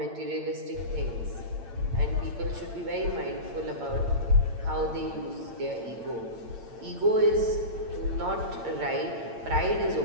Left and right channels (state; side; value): late; left; 8.8 ms